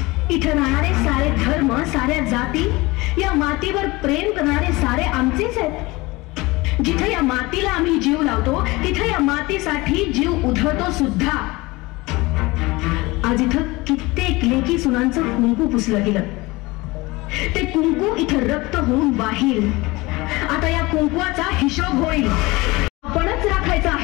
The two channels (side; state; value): right; quieter; 22.3 dB